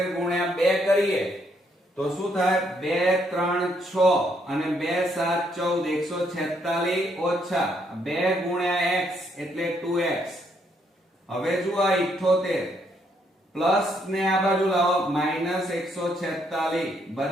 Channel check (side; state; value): both; normal; correlation 0.73